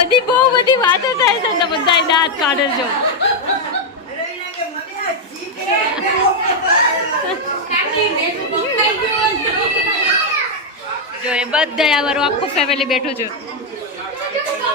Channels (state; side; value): normal; both; correlation 0.01